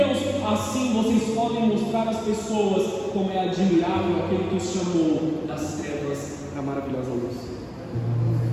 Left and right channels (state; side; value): identical; both; correlation 1.00